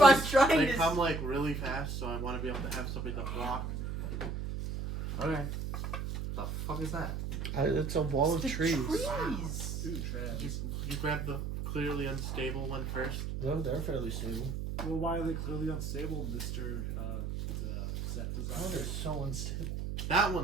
I'm sneezes, trying they to... come like really fast, so I want to be able to have something to block. Okay. The fuck is that? It's a wall of The trees. trees. Ooh, trash. You grab the clearly unstable one first. No, they're fairly stable. Well, why are they clearly unstable, Mr. The set Oh, they're designer? so unstable. That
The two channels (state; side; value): noise; right; hum, 3 dB below the sound